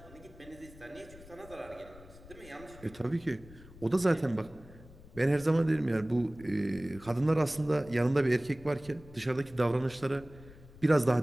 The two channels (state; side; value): noise; left; rumble, 20 dB below the sound